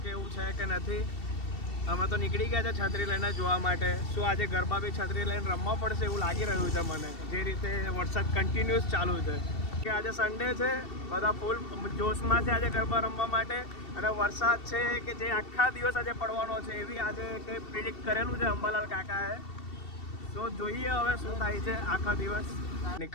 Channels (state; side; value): late; right; 2.7 ms